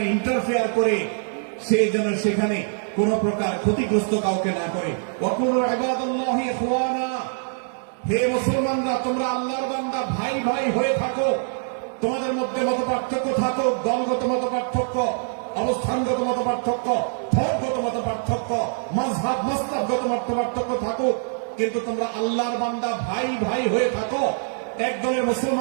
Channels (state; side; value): silent; left; digital silence